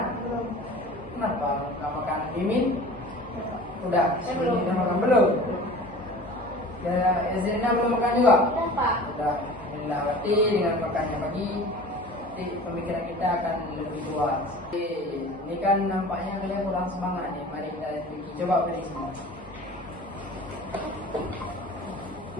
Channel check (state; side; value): normal; both; correlation 0.41